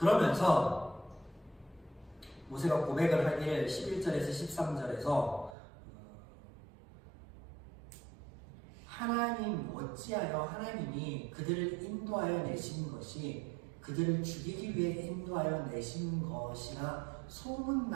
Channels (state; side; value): drops out; left; at 5.6 s